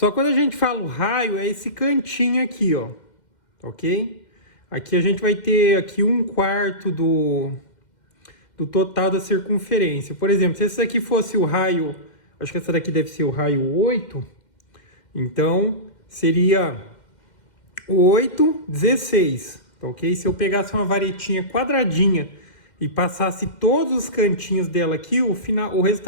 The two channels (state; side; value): late; right; 2.1 ms